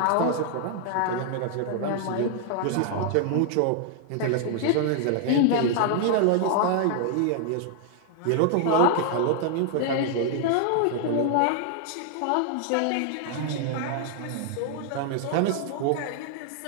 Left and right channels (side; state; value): both; different; correlation 0.00